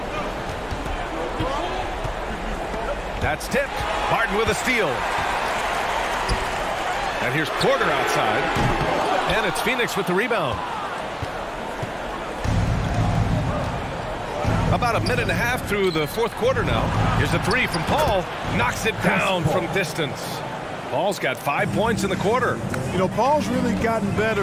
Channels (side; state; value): both; identical; correlation 1.00